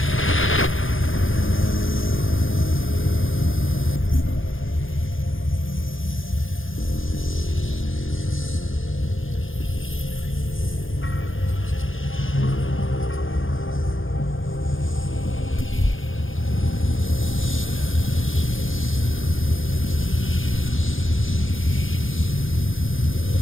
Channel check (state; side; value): late; right; 0.58 ms